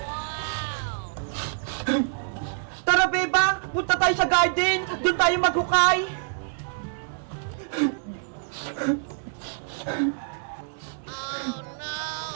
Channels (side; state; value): left; silent; digital silence